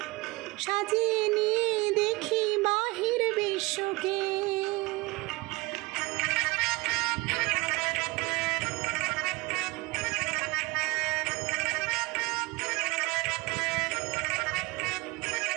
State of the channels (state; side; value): quieter; left; 23.3 dB